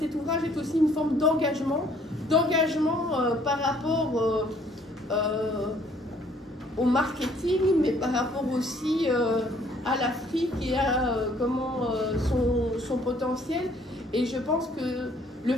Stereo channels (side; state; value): both; normal; correlation 0.61